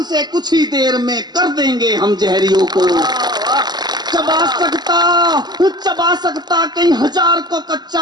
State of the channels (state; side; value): late; left; 0.20 ms